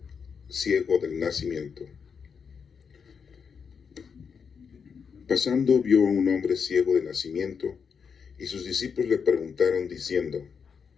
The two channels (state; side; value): quieter; right; 6.3 dB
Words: ciego del nacimiento. Pasando vio a un hombre ciego de nacimiento, y sus discípulos le preguntaron diciendo: